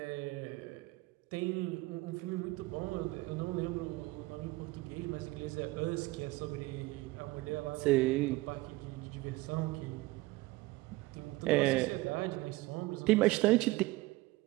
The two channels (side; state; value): left; quieter; 20.4 dB